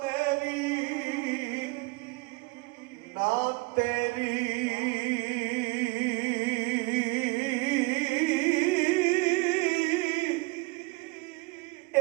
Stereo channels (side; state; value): left; quieter; 25.5 dB